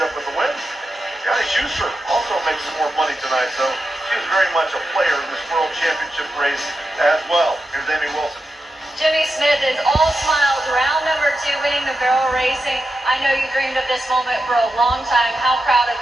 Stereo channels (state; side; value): normal; both; correlation 0.89